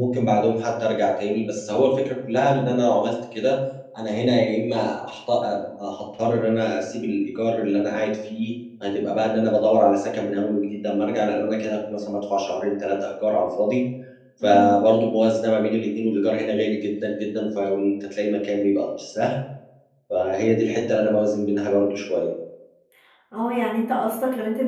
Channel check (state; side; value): identical; both; correlation 1.00